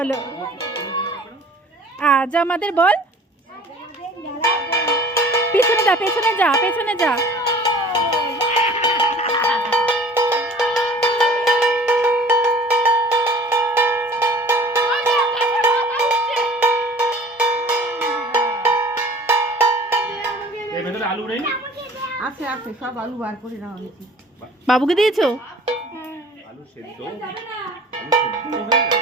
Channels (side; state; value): both; normal; correlation 0.47